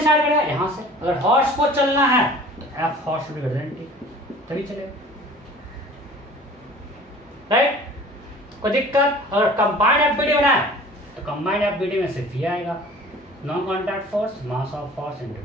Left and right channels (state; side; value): normal; both; correlation 0.45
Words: करेगा? यहां से अगर हॉर्स को चलना है तो F horse should be greater then T, तभी चलेगा। राइट? कोई दिक्कत? अगर कंबाइंड एफबीडी बनाए तो कंबाइंड एफबीडी में सिर्फ ये आएगा, non contact force, mass of horse into